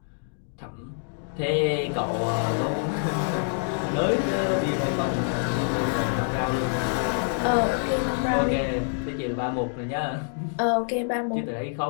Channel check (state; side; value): silent; right; digital silence